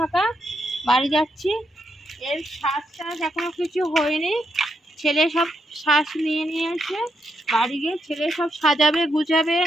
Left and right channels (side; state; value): both; normal; correlation 0.80